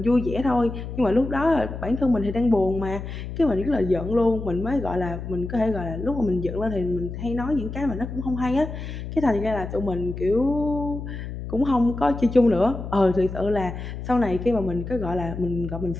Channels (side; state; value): left; noise; hum, 8 dB below the sound